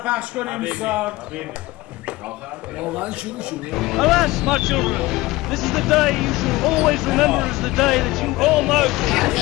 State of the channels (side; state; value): right; quieter; 19.7 dB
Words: پخش کنیم دوستا. واقعا شروع شد. Alas, my children, this is the day you shall always remember as the day that you all know.